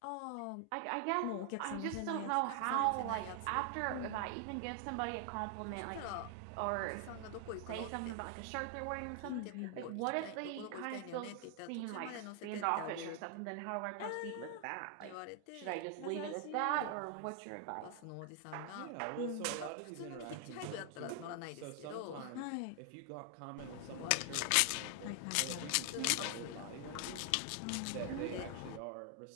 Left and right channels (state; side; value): different; both; correlation 0.00